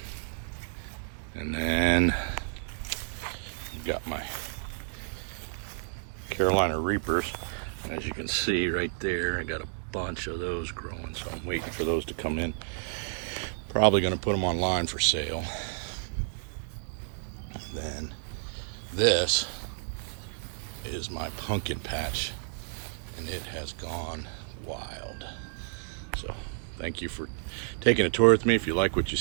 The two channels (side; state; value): left; silent; digital silence